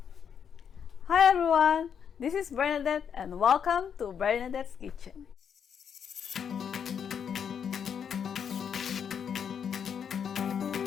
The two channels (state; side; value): quieter; right; 7.6 dB